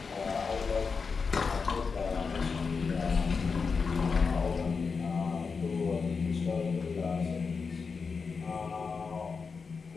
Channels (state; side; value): quieter; right; 5.1 dB